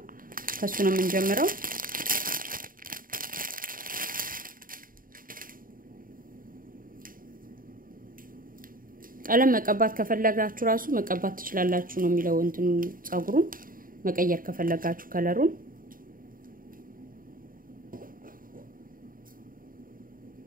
ከሱ ነው የምንጀምረው ቀለም መቀባት ከፈለጋችሁ ራሱ መቀባት ትችላላችሁ ነው የሚለው እንትኑ ጸጉሩን መቀየር ከፈለጋችሁ ከለሩን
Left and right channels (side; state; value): left; late; 0.41 ms